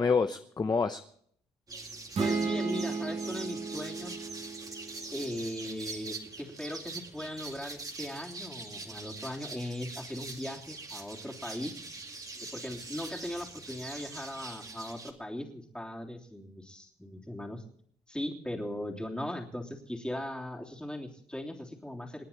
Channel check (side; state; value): both; normal; correlation 0.75